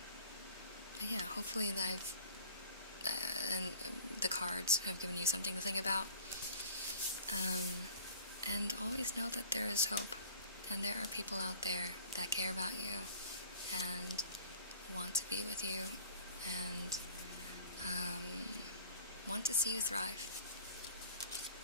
But yeah, hopefully and the cards have given you something to think about. And always know that there is hope, and there are people out there that care about you, and want to be with you, and want to see you thrive.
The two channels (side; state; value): both; inverted; correlation -0.46